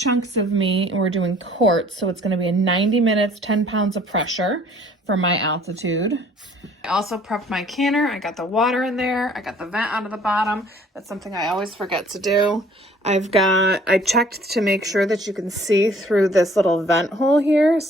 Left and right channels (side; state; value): both; normal; correlation 0.55